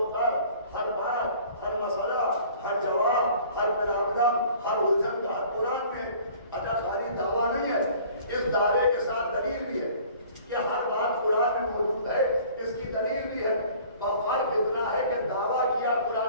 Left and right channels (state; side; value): inverted; both; correlation -0.50